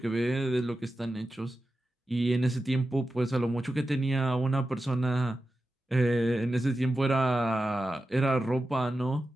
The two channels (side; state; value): both; normal; correlation 0.92